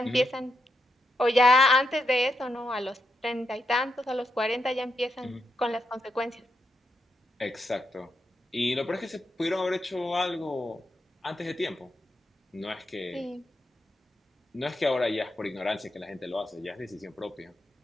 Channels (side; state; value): both; normal; correlation 0.83